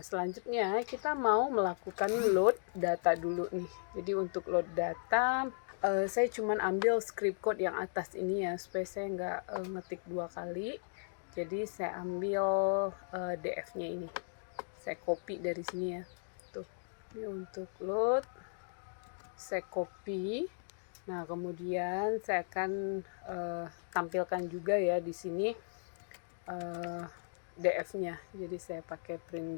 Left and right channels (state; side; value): silent; right; digital silence